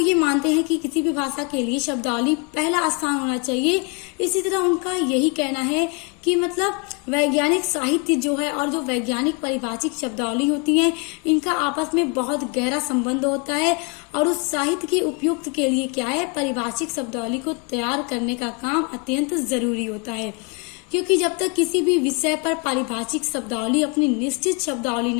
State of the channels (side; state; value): right; quieter; 32.5 dB